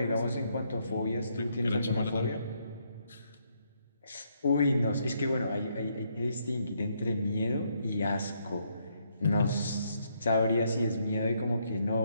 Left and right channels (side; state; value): both; inverted; correlation -0.74